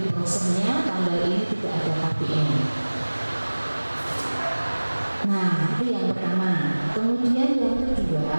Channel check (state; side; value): inverted; both; correlation -1.00